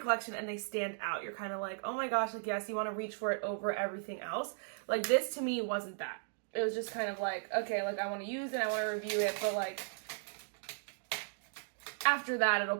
and they stand out. You're kind of like, oh my gosh, like, yes, you want to reach for it over everything else. Like, this to me wasn't that. It was just kind of like, okay, like, I want to use it, I want to review it, but like, after that, it'll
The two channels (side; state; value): left; silent; digital silence